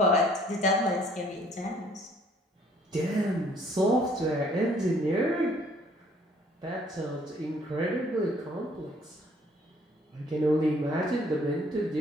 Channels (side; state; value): both; normal; correlation 0.60